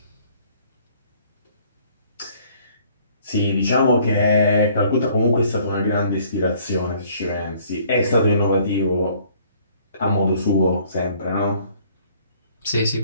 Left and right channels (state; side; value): inverted; both; correlation -0.59